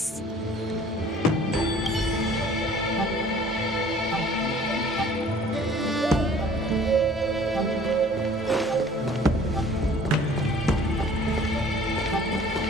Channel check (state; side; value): normal; both; correlation 0.52